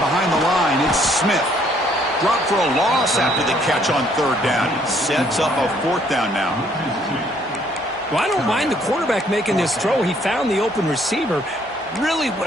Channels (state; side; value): normal; both; correlation 0.65